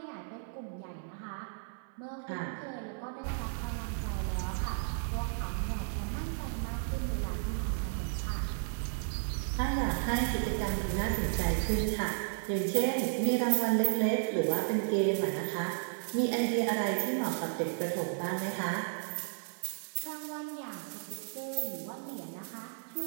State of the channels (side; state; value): left; silent; 55 dB below the other